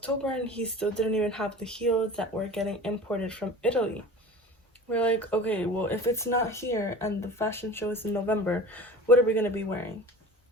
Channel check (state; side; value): normal; both; correlation 0.38